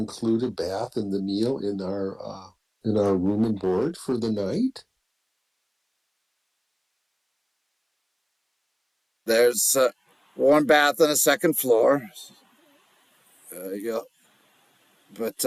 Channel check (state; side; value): identical; both; correlation 1.00